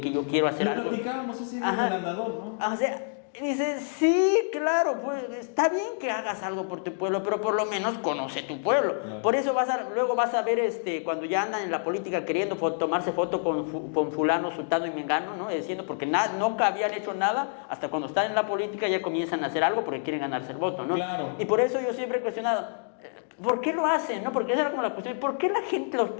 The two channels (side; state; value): right; silent; digital silence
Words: que yo quiero hacer Lo platicábamos ese día del andador, ¿no? O sea, dices, sí, claro, pues está bien que hagas algo por tu pueblo, pero por lo menos conoce tu pueblo. Claro. Por eso luego vas a ver cuando ya andan en la política queriendo tomarse foto con fulano, sultano y mengano, ¿no? Diciendo, porque nunca habían hecho nada, hasta cuando están en la política ya comienzan a hacer algo porque quieren ganarse el voto, ¿no? Claro. Y por eso yo siempre he cuestionado, ¿por qué lo hacen? ¿No? Porque esa era como la cuestión. ¿Por qué los